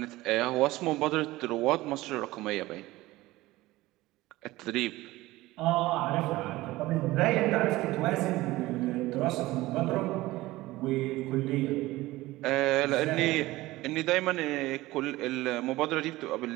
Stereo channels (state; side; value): quieter; left; 18.4 dB